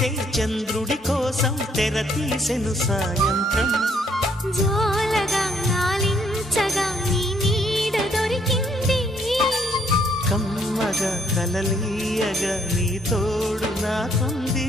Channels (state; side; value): normal; both; correlation 0.68